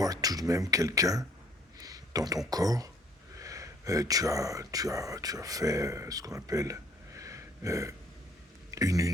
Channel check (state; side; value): normal; both; correlation 0.61